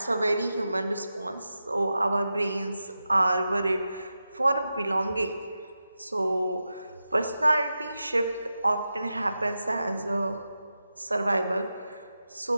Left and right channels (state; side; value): inverted; both; correlation -0.91